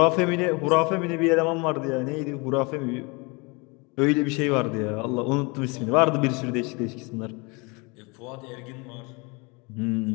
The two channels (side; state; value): right; quieter; 28.7 dB